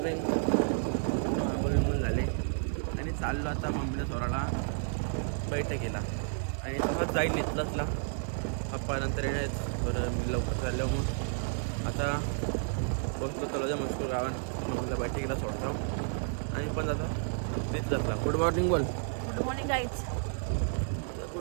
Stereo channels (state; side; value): silent; left; 57 dB below the other